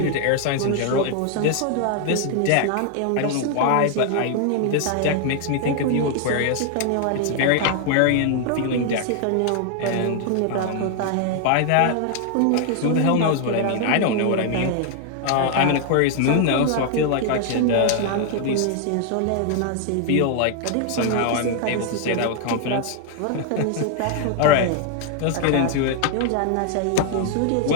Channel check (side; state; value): both; different; correlation 0.00